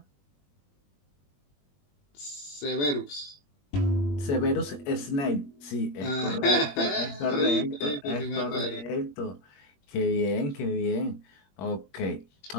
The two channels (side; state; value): right; late; 21 ms